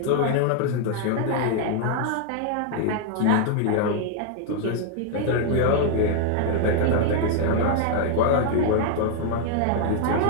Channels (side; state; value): both; different; correlation 0.00